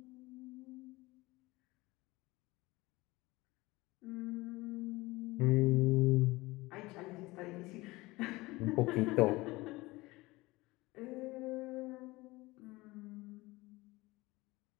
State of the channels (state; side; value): quieter; right; 21.1 dB